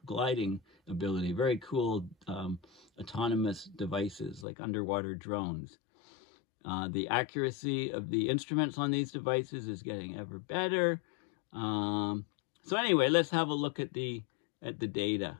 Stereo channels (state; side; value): drops out; right; at 4.5 s